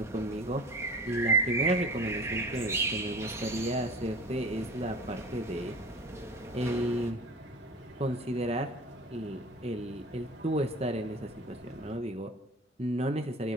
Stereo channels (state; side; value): normal; both; correlation 0.39